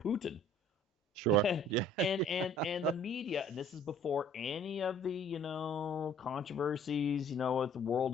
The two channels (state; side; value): normal; both; correlation 0.54